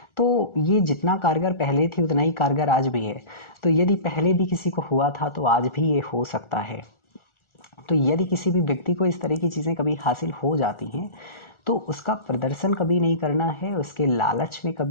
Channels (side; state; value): right; late; 1.4 ms